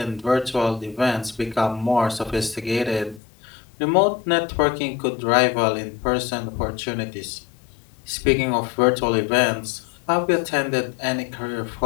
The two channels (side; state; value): right; drops out; at 3.2 s